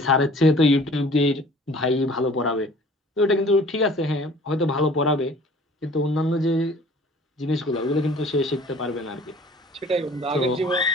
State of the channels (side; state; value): both; normal; correlation 0.50